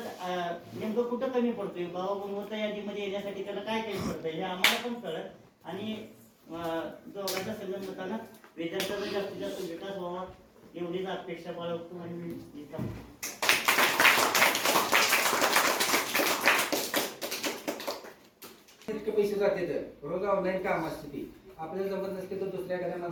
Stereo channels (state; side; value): identical; both; correlation 1.00